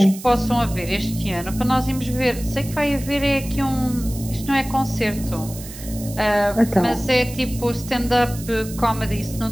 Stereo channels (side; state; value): right; noise; hiss, 14 dB below the sound